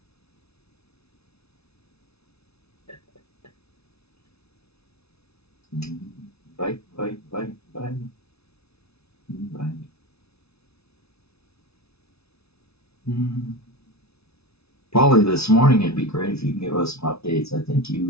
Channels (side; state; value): right; late; 0.79 ms